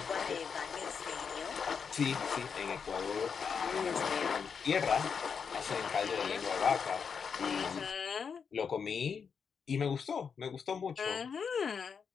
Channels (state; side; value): quieter; right; 6.3 dB